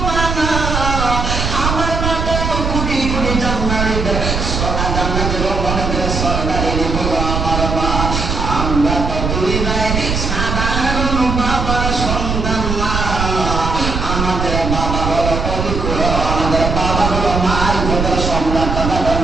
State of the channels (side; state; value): right; noise; rumble, 2 dB below the sound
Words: মা না, আমার মা তো কোটি কোটি জান্নাতের সরদারি হলো আমার মা। আমরা তো দুই ভাই সাধারণ বাবার সন্তান না, আমাদের বাবা হলো পবিত্র, আমাদের বাবা হলো মার ভোটের সম্রাট। তখন